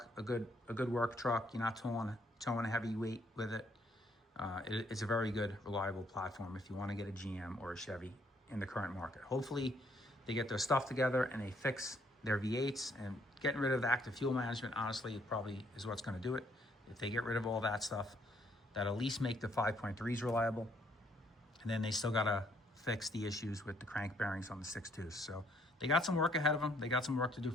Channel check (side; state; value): both; normal; correlation 0.67